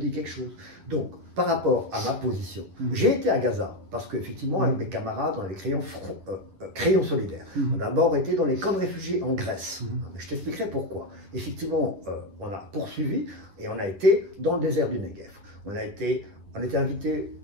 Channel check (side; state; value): left; late; 10 ms